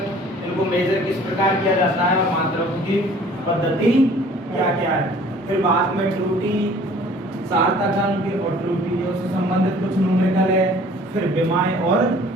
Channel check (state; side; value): normal; both; correlation 0.52